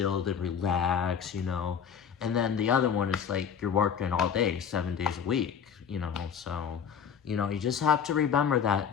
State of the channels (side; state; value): right; quieter; 7.5 dB